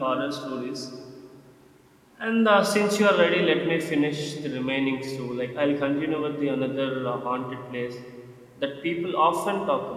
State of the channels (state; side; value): identical; both; correlation 1.00